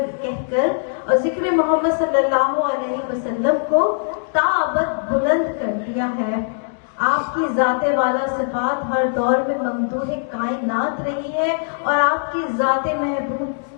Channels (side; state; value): right; silent; digital silence